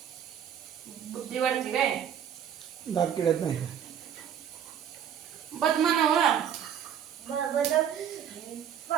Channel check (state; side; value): quieter; left; 9.0 dB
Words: बुद्धी वाढते काय. दात किडत नाही. बद मानावं. बदाम